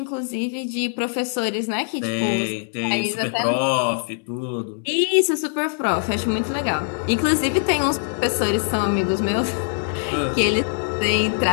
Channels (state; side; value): silent; right; digital silence